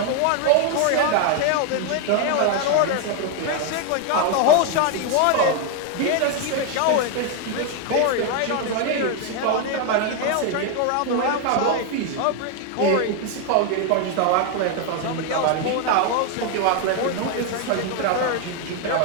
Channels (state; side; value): different; both; correlation 0.01